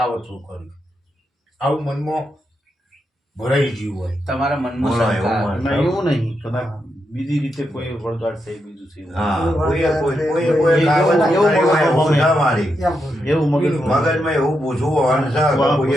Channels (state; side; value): normal; both; correlation 0.84